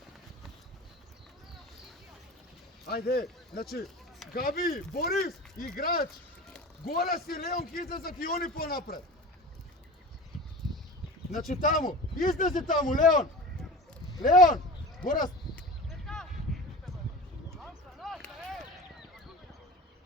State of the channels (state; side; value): normal; both; correlation 0.35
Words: Ајде, значи, Габи, Борис, играч. Горас и Леон ќе излезат и они понапред. Значи таму, излези таму, Леон, Горас.